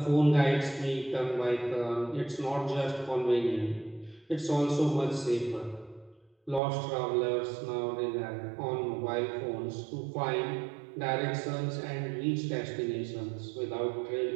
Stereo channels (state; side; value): drops out; left; at 6.6 s